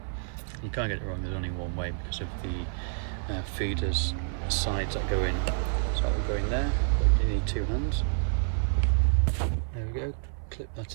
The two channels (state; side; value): silent; left; 56 dB below the other